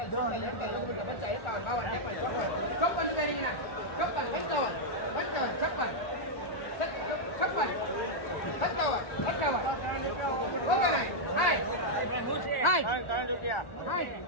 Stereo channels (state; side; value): late; right; 1.4 ms